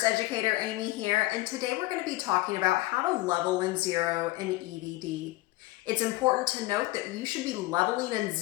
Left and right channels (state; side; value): quieter; right; 19.5 dB